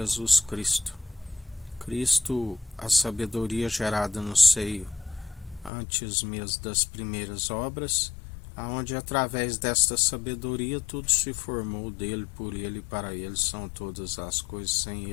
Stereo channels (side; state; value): right; drops out; at 5.7 s